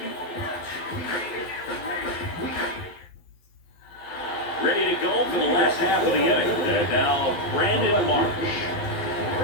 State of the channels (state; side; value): late; right; 12 ms